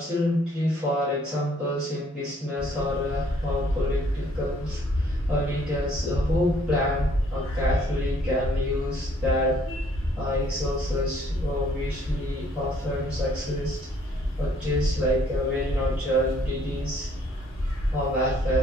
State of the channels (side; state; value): both; normal; correlation 0.63